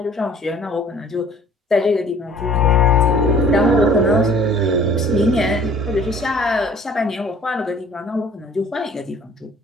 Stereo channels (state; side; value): normal; both; correlation 0.52